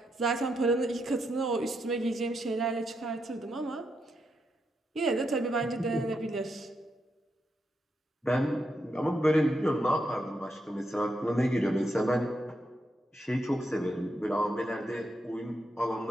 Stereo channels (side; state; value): both; normal; correlation 0.82